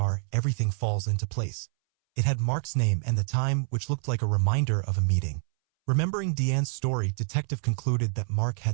everything falls into place. It had Mark's name and the time, which looked like a reminder of a meeting. Remembering Diane's story, detective concluded that Mark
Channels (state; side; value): silent; left; 60 dB below the other